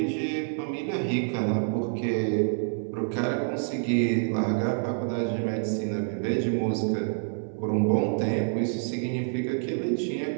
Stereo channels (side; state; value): left; silent; 60 dB below the other